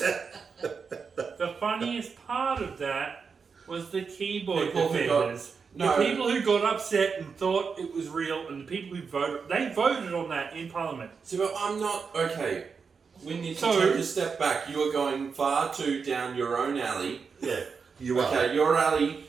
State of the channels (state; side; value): quieter; left; 5.5 dB